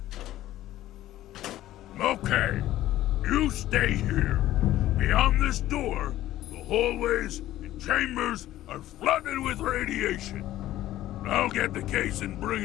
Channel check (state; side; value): quieter; right; 14.3 dB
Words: Okay, you stay here. Beyond this door, the hallways and chambers are flooded with radiation. I'll get the case and bring